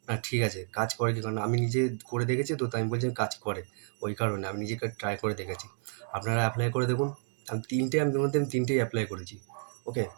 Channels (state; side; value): silent; left; 57 dB below the other